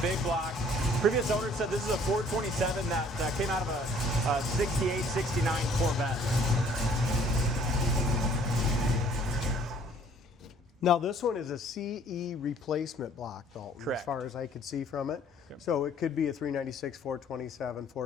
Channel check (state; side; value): normal; both; correlation 0.58